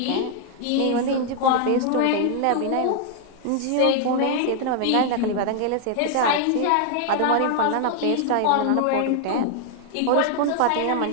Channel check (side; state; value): both; different; correlation 0.00